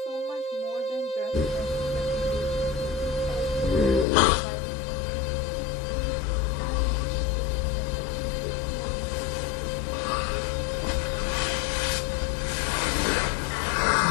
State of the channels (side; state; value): right; drops out; at 4.0 s